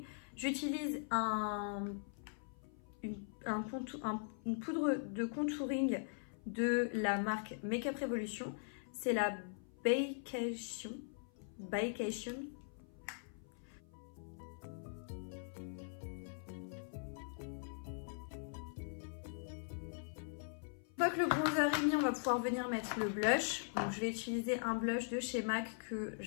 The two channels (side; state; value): right; silent; 50 dB below the other